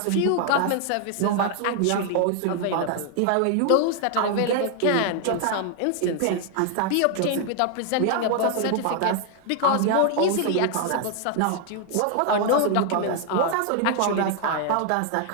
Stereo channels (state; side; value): different; both; correlation 0.00